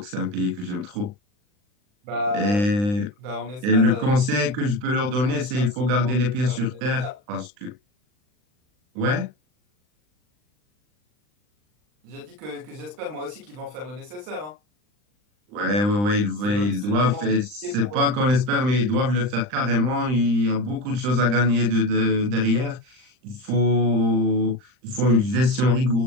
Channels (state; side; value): late; left; 39 ms